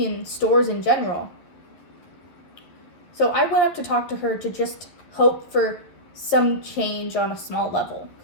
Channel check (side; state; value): right; late; 11 ms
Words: in stores in general. So I went up to talk to her to just hope for some change on a small level,